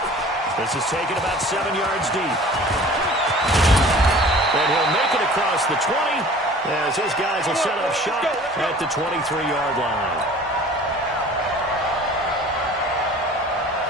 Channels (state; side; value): normal; both; correlation 0.46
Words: This is taken about 7 yards deep. And he'll make it across the 20, as his guys will set up shop at the 23-yard line.